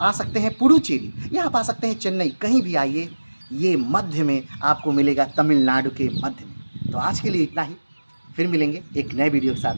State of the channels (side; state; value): both; inverted; correlation -1.00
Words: आ सकते हैं पुडुचेरी, या आप आ सकते हैं चेन्नई। कहीं भी आइए, ये मध्य में आपको मिलेगा, तमिलनाडु के मध्य में। तो आज के लिए इतना ही, फिर मिलेंगे एक नए वीडियो के